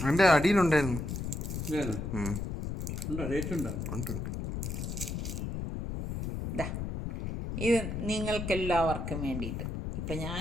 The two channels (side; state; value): left; noise; rumble, 4 dB below the sound